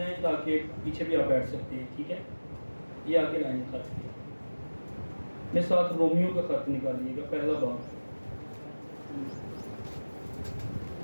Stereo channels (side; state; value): both; inverted; correlation -1.00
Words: تاکہ پیچھے بھی آپ بیٹھ سکتے ہیں، ٹھیک ہے؟ یہ آگے لائن خالی ہے۔ میں ساتھ رومیو کا خط نکالیے گا، پہلا باب۔